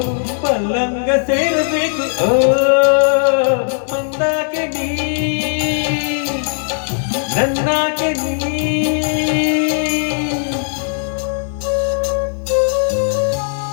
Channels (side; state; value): right; silent; 68 dB below the other